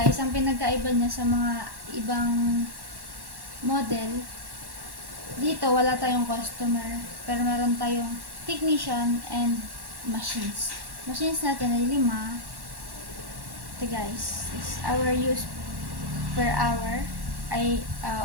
ang pinagkaiba niya sa mga ibang model, dito wala tayong customer, pero meron tayong technician and machines. Machines natin ay 5. Ito guys, is our use per hour ay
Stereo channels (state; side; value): late; left; 1.1 ms